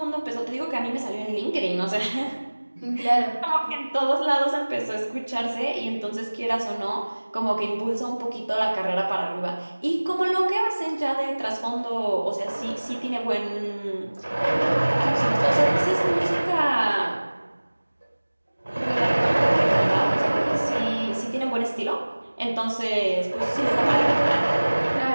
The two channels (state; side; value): inverted; both; correlation -1.00